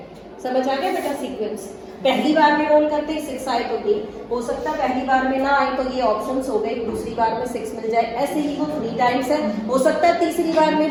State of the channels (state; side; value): identical; both; correlation 1.00